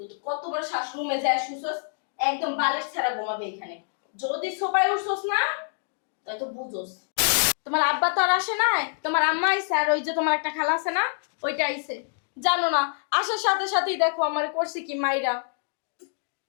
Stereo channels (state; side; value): silent; right; digital silence